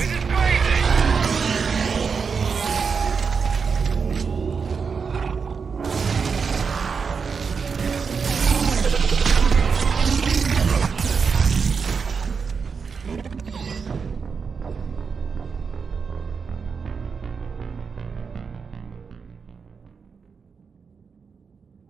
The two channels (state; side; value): quieter; left; 5.6 dB